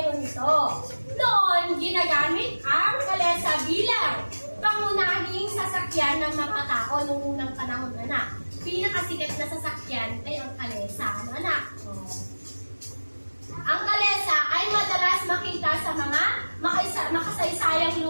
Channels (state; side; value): inverted; both; correlation -1.00